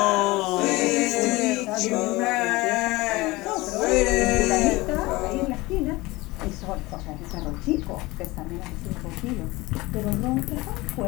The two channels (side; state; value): right; quieter; 21.3 dB